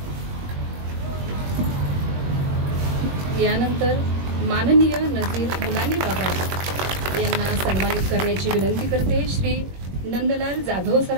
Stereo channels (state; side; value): late; left; 21 ms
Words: यानंतर माननीय नजीर मुलानी बाबा यांना सन्मानित करण्याची विनंती करते. श्री नंदलाल जाधव